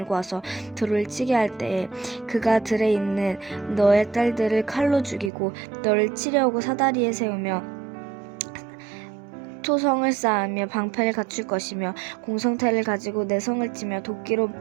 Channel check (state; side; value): drops out; left; at 5.3 s